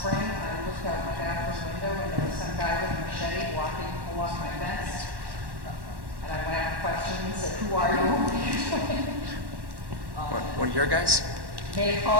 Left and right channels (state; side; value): late; left; 1.1 ms